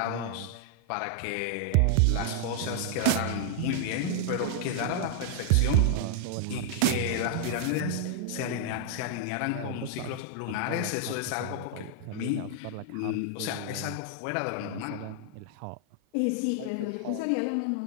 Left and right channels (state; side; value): different; both; correlation -0.01